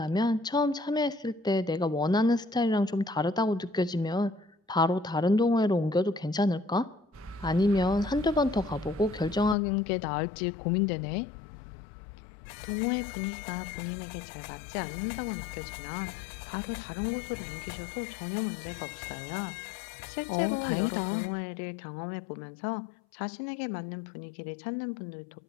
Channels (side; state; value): right; drops out; at 9.6 s